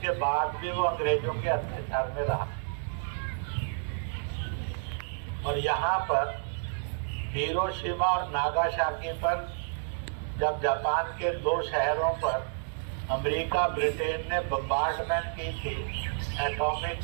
बाद भी वो अंग्रेजों के अत्याचार में रहा। और यहाँ पर हिरोशिमा और नागासाकी पर जब जापान के 2 शहरों पर अमेरिका ब्रिटेन ने बम्बार्डमेंट की थी एटॉमिक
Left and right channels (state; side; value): silent; left; digital silence